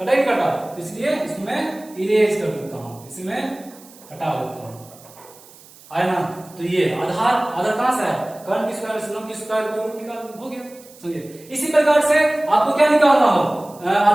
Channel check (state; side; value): noise; right; hiss, 23 dB below the sound